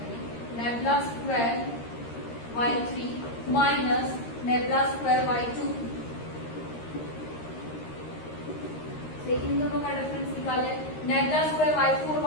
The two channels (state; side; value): late; right; 13 ms